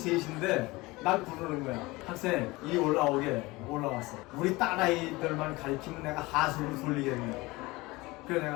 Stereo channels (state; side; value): quieter; right; 21.9 dB